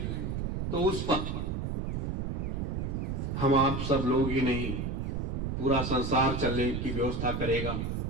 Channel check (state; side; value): noise; right; rumble, 1 dB below the sound